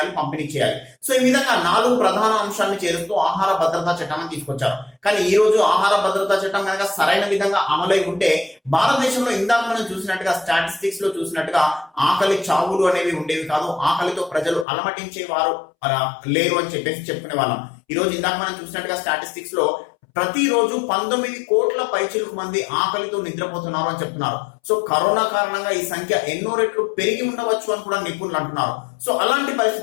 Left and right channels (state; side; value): drops out; right; at 14.7 s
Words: పంపిణీ చేయాలి. సో ఈ విధంగా 4 ప్రధాన అంశాలను చేరుస్తూ ఆహార భద్రతా చట్టాన్ని తీసుకొచ్చారు. కానీ ఈ రోజు ఆహార భద్రతా చట్టం కనుక సరైన విధంగా అమలై ఉంటే భారతదేశంలో ఇందాక మనం చూసినట్టుగా స్టాటిస్టిక్స్ లో చూసినట్టుగా ఆకలి చావులు అనేవి ఉండేవి కాదు, ఆకలితో ప్రజలు అలమటించేవారు లేరు అని చెప్పేసి చెప్పుకునే వాళ్ళం. ఈ రోజు ఇందాక మనం చూసినట్టుగా స్టాటిస్టిక్స్ లో ప్రతిరోజు 19 కోట్ల పైచిలకు మంది ఆకలితో నిద్రపోతున్నారు అని చెప్తున్నారు. సో కరోనా కారణంగా ఈ సంఖ్య ఎన్నో రెట్లు పెరిగి ఉండవచ్చు అని కూడా నిపుణులు అంటున్నారు. సో అలాంటి